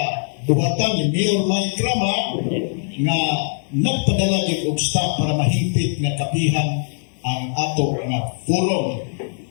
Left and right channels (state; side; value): silent; right; 65 dB below the other